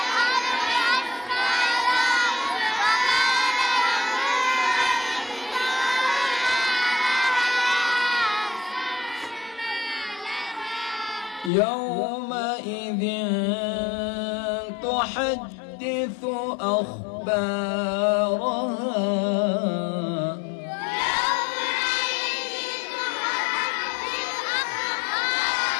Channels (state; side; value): drops out; right; at 11.5 s